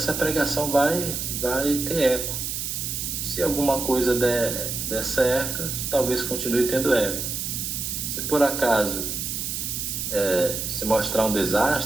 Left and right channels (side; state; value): right; noise; hiss, 3 dB below the sound